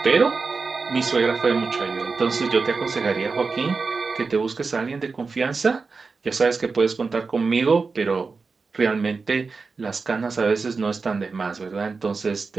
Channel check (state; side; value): quieter; left; 4.5 dB